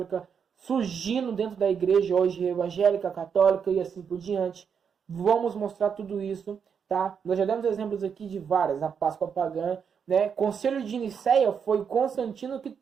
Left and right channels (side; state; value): left; quieter; 6.9 dB